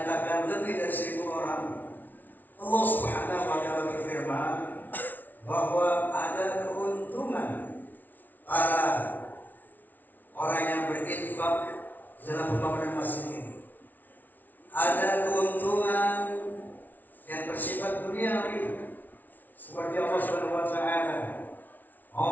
lebih dari 1.000 orang, Allah Subhanahu wa Ta'ala berfirman bahwa ada keuntungan para orang yang berinfak dalam pembangunan masjid ini. Ada keuntungan yang bersifat duniawi, seperti Allah Subhanahu wa Ta'ala,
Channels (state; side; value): late; right; 0.083 ms